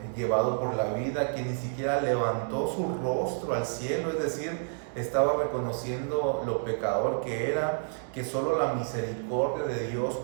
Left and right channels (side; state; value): left; silent; digital silence